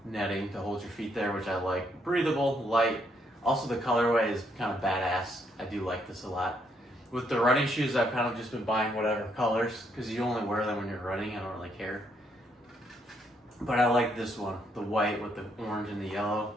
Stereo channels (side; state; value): both; normal; correlation 0.73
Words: netting to hold your feet there, which I like. Breathable, light. Also, the colorway is kind of badass. I do like this a lot. With the running shoes, I've kind of just been buying whatever colors because you only wear them when you're running. I don't really care. But I like this one, the white with the orange and the yellow.